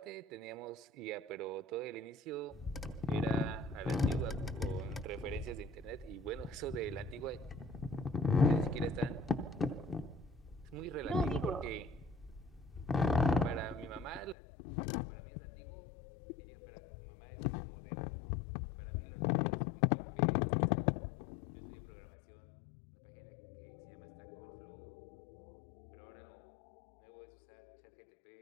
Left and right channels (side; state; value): right; drops out; at 14.4 s